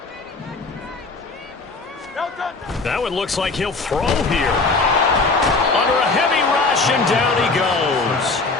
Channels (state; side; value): quieter; right; 3.8 dB